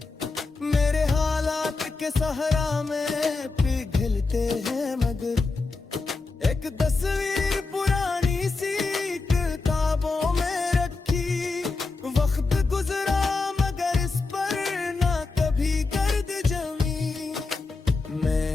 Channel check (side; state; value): right; quieter; 3.8 dB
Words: मेरे हालात के सहरा में पिघलते हैं। मगर एक तस्वीर पुरानी सी किताबों में रखी, वक्त गुजरा मगर इस पर ना कभी गर्द जमी।